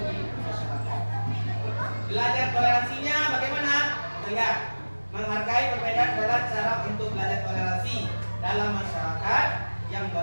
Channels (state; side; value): inverted; both; correlation -1.00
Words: di masyarakat. Belajar toleransinya bagaimana? Lihat, menghargai perbedaan adalah cara untuk belajar toleransi dalam masyarakat yang